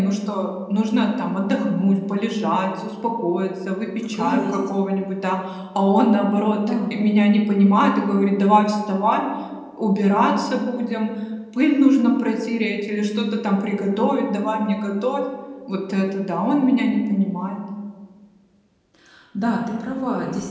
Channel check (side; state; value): both; identical; correlation 1.00